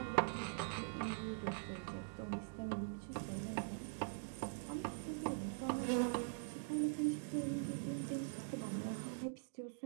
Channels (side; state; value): left; silent; digital silence